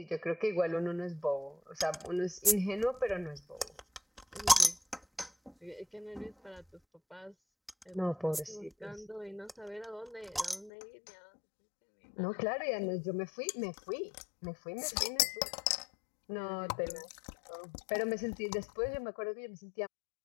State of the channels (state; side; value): drops out; right; at 10.7 s